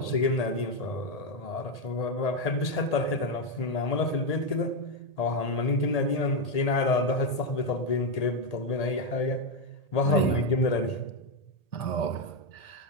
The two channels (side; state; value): right; late; 1.8 ms